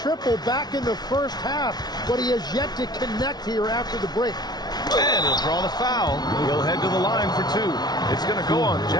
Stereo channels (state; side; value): late; right; 0.19 ms